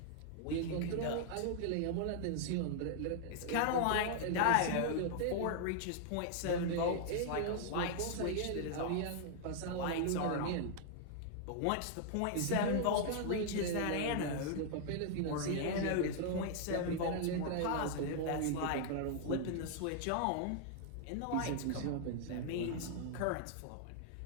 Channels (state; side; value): different; both; correlation 0.00